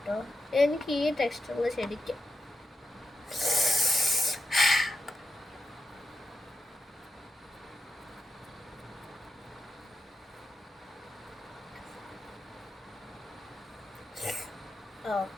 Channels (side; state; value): both; normal; correlation 0.87